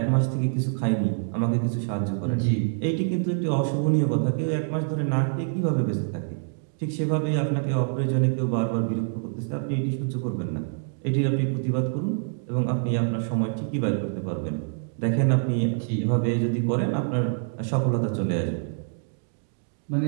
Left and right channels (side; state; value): left; silent; digital silence